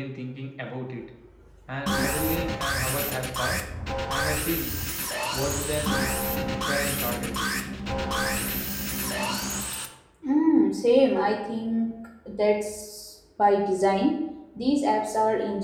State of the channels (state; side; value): identical; both; correlation 1.00